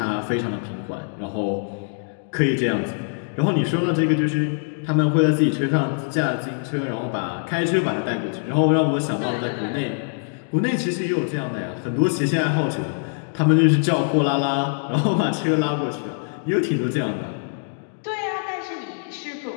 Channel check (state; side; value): silent; right; 63 dB below the other